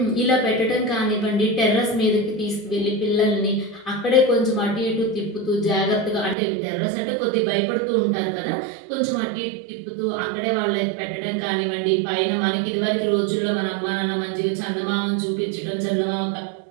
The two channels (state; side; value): drops out; left; at 6.4 s